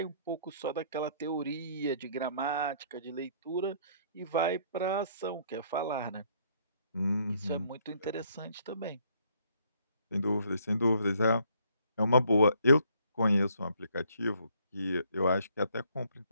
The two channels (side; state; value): both; inverted; correlation -0.65